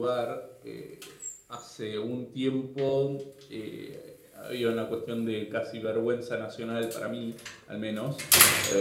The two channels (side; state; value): both; identical; correlation 1.00